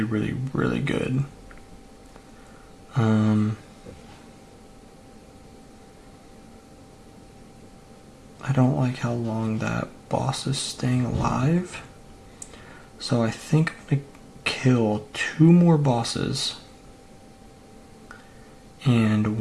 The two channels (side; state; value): both; identical; correlation 1.00